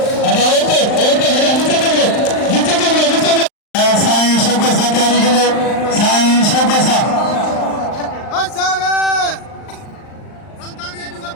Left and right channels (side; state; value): right; late; 39 ms